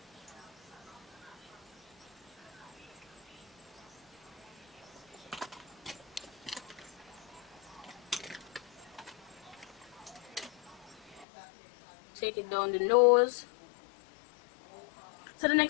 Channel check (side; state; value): right; drops out; at 11.2 s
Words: Take it down the nose. So the